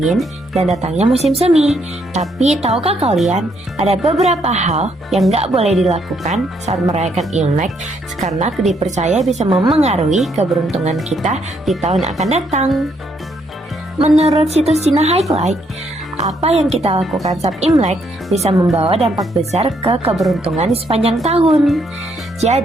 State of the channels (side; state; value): both; normal; correlation 0.73